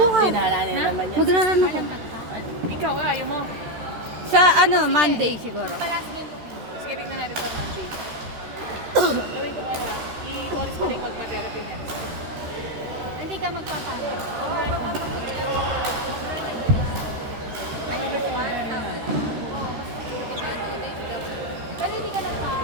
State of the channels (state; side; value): late; left; 13 ms